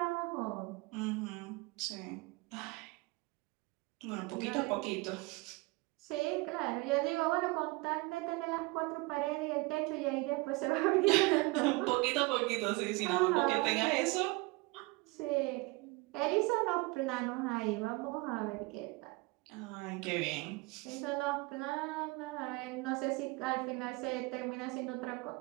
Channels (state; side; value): quieter; left; 24.8 dB